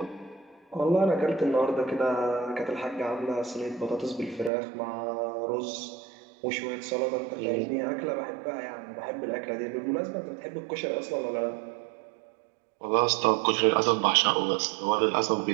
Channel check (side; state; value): left; drops out; at 4.5 s